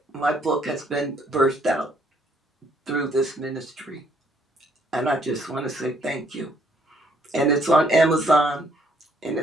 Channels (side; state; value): both; normal; correlation 0.67